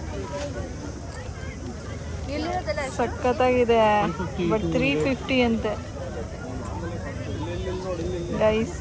ಸಖತ್ತಾಗಿದೆ. ಬಟ್ 350 ಅಂತೆ ಗೈಸ್.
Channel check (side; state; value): both; identical; correlation 1.00